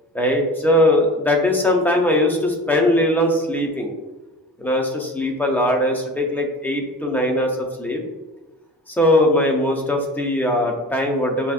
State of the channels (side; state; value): both; normal; correlation 0.38